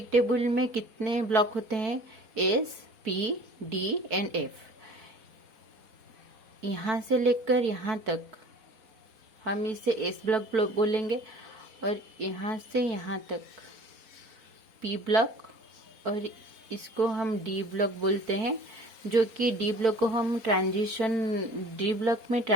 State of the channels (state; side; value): late; left; 4.5 ms